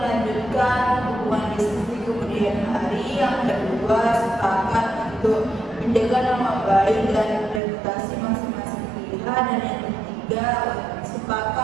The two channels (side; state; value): left; drops out; at 7.6 s